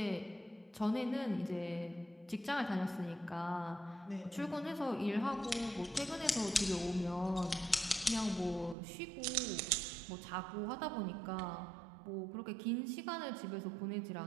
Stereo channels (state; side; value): drops out; left; at 8.8 s